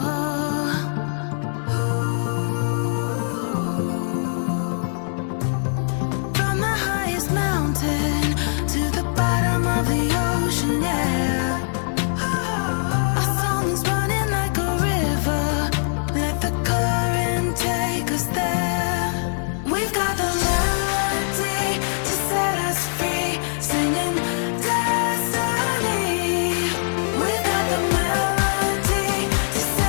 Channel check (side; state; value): right; silent; digital silence